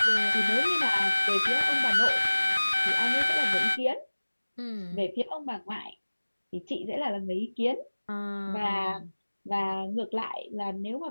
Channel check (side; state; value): both; inverted; correlation -1.00